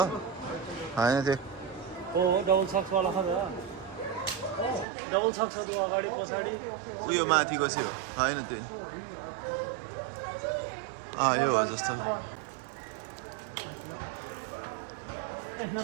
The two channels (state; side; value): drops out; left; at 4.9 s